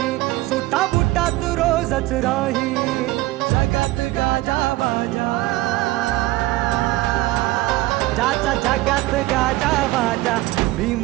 सुटा बुटात रोजच राही. जगात गाजा बाजा, ज्याचा जगात गाजा बाजा,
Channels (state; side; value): quieter; left; 18.7 dB